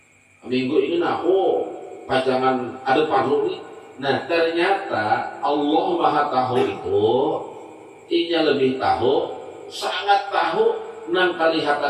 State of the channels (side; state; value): both; identical; correlation 1.00